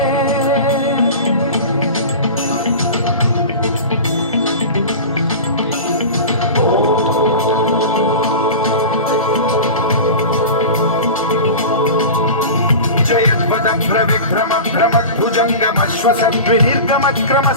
विभ्रम भ्रम भुजंगमश्वसद्विनिर्गमक्रम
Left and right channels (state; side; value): inverted; both; correlation -0.31